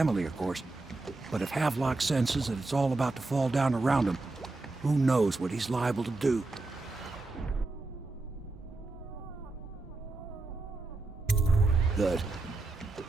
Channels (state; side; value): quieter; left; 3.3 dB